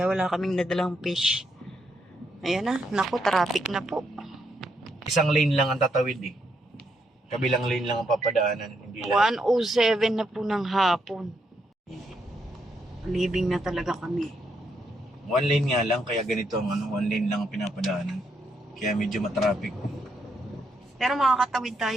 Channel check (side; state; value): both; normal; correlation 0.78